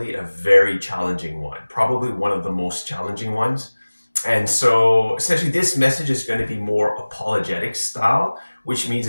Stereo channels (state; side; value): inverted; both; correlation -1.00